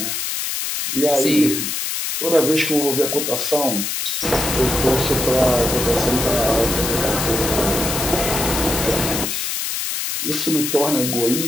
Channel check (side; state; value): left; noise; hiss, 2 dB below the sound